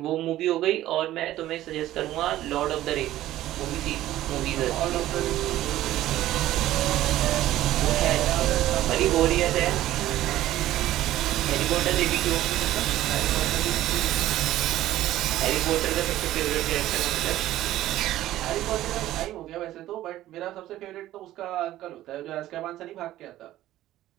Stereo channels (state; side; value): quieter; left; 14.3 dB